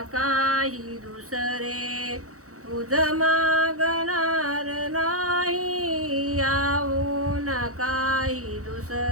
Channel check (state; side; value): late; left; 0.65 ms